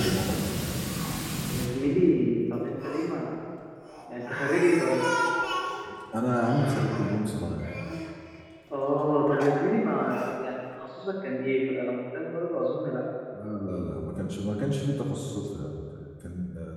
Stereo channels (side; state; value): both; identical; correlation 1.00